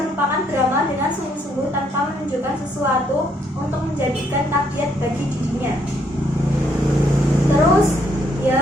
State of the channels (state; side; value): normal; both; correlation 0.71